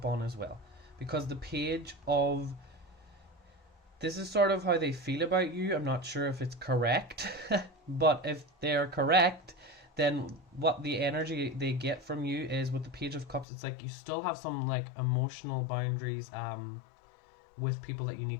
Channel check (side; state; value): right; drops out; at 13.5 s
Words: on as well. Because the page of... This is sort of how they feel about you. I'm not sure if it's correct, but if they're correct, then what the energy they get from you is with the Page of Cups, it's like you still have some like emotional boundaries with people that you